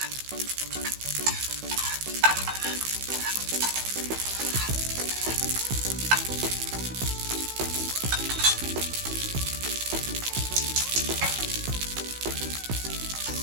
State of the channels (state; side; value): late; left; 16 ms